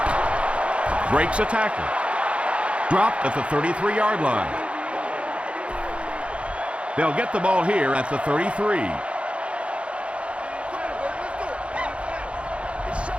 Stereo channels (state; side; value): late; left; 0.060 ms